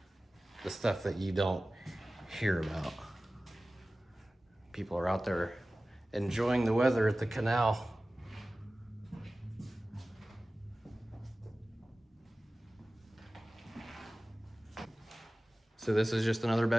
The stuff that you don't hear about. People are out there enjoying the weather at the canal. So this is just another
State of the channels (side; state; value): both; normal; correlation 0.97